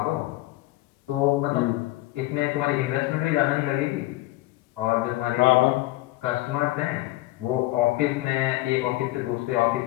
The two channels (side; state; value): right; quieter; 18.5 dB